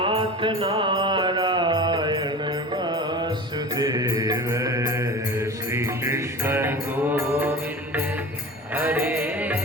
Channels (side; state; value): both; normal; correlation 0.34